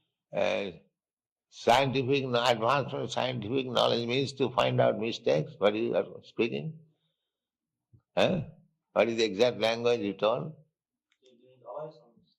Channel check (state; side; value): identical; both; correlation 1.00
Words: advanced scientific knowledge means to find out mistakes. What you are speaking? What is the exact language you told? There is always some